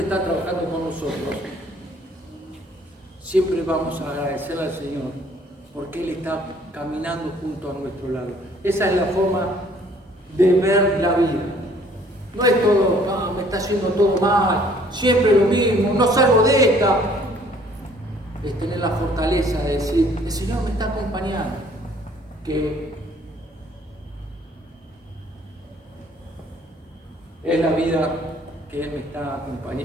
trabajando con nosotros, siempre vamos a agradecerle al Señor porque Él está caminando junto a nuestro lado. Esa es la forma de ver la vida. No es todo, no, me está haciendo todo mal, siempre lo mismo, no salgo de esta. Es tener la fortaleza de decir, el Señor me está acompañando, que es la vida que Él me está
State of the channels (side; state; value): both; normal; correlation 0.59